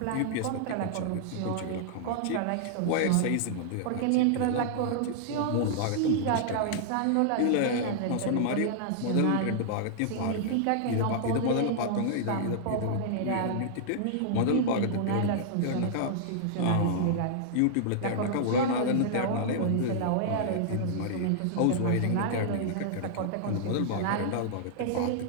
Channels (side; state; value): both; different; correlation -0.01